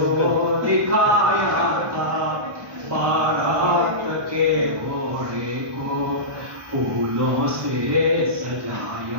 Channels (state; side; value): late; left; 1.2 ms